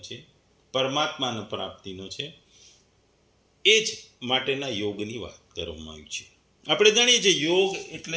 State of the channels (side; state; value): both; identical; correlation 1.00